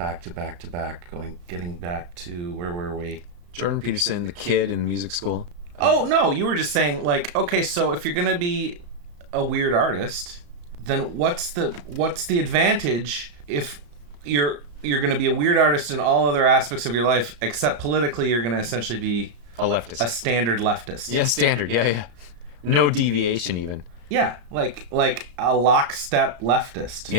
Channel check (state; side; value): late; left; 34 ms